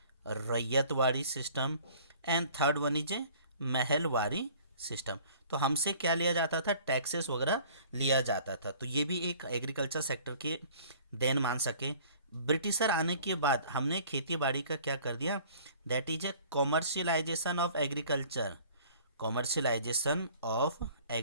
ryotwari system, and third one is a Mahalwari system. तो हमसे क्या लिया जाता था, टैक्सेस वगैरह लिया जाता था। तो ये भी एक एग्रीकल्चर सेक्टर के देन मान सके। ब्रिटिशर आने के बाद हमने खेती बाड़ी का क्या कर दिया, that is A commercialisation of agriculture, commercialisation of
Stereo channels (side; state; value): both; inverted; correlation -0.51